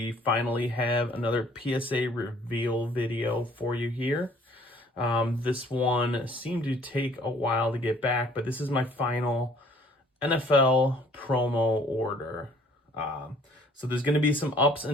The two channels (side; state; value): both; normal; correlation 0.57